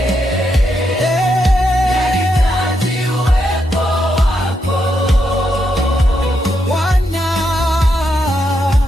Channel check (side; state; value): both; normal; correlation 0.81